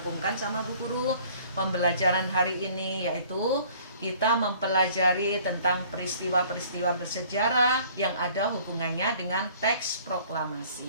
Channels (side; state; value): both; inverted; correlation -0.54